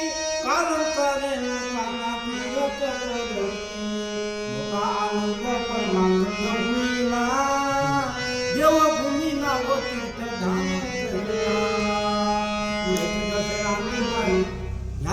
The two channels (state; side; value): identical; both; correlation 1.00